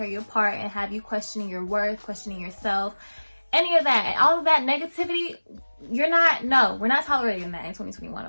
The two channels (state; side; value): inverted; both; correlation -1.00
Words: you apart and have you questioning your worth, questioning yourself. Any of that, all of that negativity, we're not tolerating that in